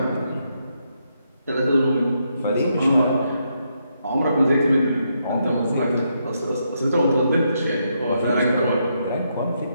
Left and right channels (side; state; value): both; inverted; correlation -0.79